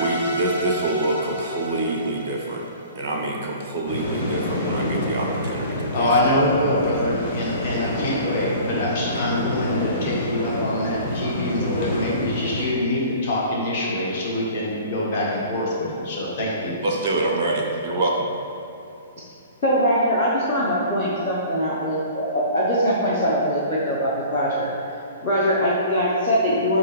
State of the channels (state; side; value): inverted; both; correlation -0.44